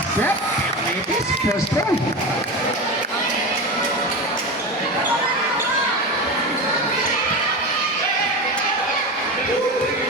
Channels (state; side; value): normal; both; correlation 0.23